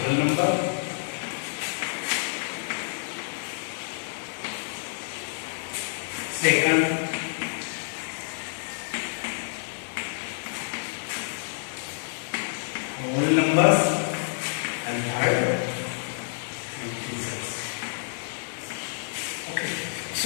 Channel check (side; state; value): right; silent; digital silence